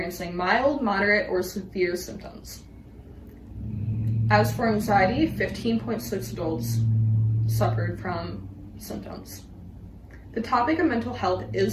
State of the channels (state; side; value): identical; both; correlation 1.00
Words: mild, moderate, or severe symptoms. As for anxiety, 15.6 adults suffered from symptoms. The topic of mental health